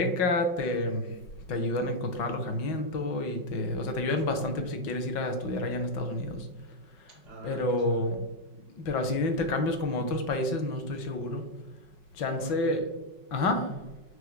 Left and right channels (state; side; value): late; right; 5.4 ms